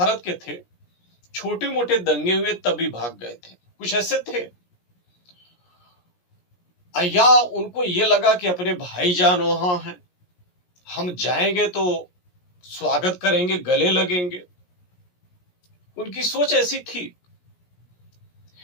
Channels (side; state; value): right; late; 17 ms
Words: के थे, छोटे मोटे दंगे हुए तभी भाग गए थे, कुछ ऐसे थे। या उनको ये लगा कि अपने भाईजान वहां हैं, हम जाएंगे तो स्वागत करेंगे, गले लगेंगे। उनकी सोच ऐसी थी।